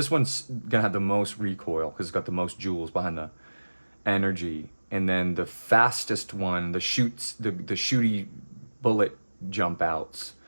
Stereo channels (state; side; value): inverted; both; correlation -1.00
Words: one's gonna have the most recoil because it's got the most jewels behind the energy. And then the fastest one, the shooty bullet jump outs.